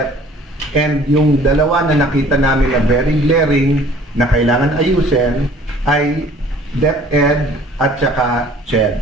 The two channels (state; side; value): normal; both; correlation 0.52